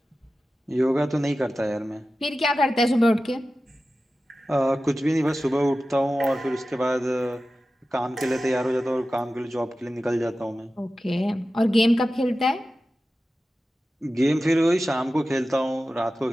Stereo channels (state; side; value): normal; both; correlation 0.94